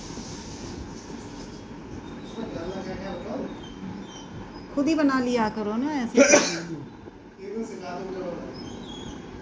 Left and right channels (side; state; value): both; identical; correlation 1.00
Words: उसमें डालना क्या क्या बताओ? खुद ही बना लिया करो ना ऐसे। ये तो सिखा दो मुझे बनाना।